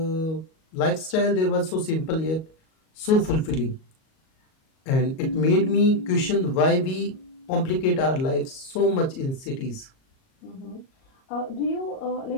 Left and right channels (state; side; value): late; right; 38 ms